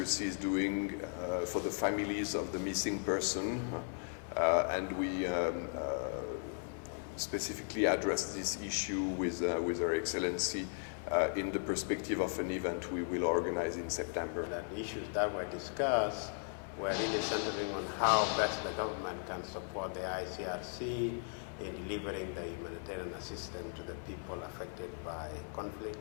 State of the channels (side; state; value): right; silent; 53 dB below the other